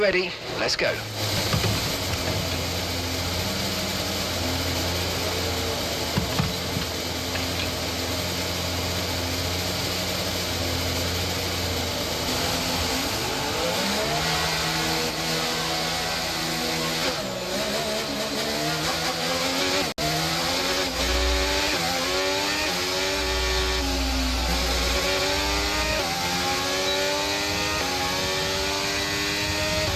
ready, let's go.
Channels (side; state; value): both; identical; correlation 1.00